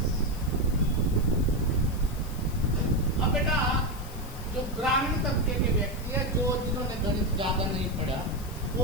अब बेटा जो ग्रामीण तबके के व्यक्ति है, जो जिन्होंने गणित ज्यादा नहीं पढ़ा,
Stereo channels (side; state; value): left; noise; hiss, 18 dB below the sound